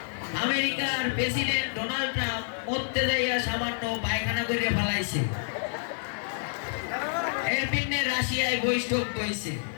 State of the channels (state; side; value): silent; right; digital silence